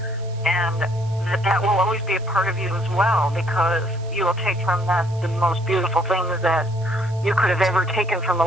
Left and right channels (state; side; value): noise; right; hiss, 26 dB below the sound